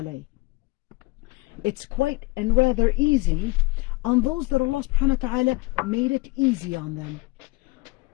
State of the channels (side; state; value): right; quieter; 23.4 dB